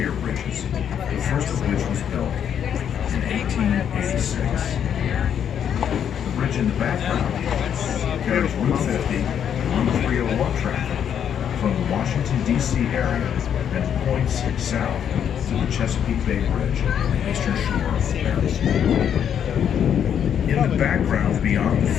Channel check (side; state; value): right; quieter; 8.8 dB